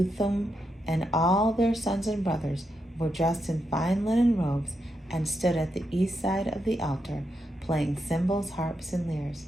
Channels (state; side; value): normal; both; correlation 0.84